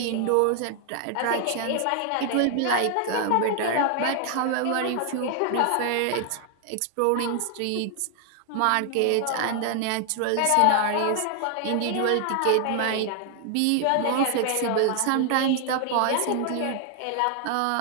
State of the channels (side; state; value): both; different; correlation 0.00